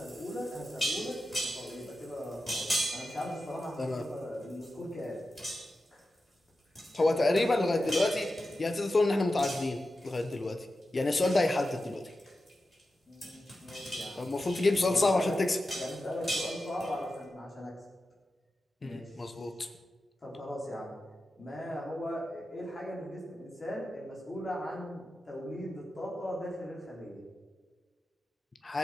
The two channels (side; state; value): both; normal; correlation 0.92